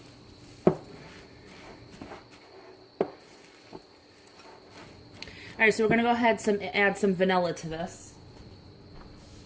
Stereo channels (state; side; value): identical; both; correlation 1.00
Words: Alright, so we're going to go ahead and add some vanilla to this.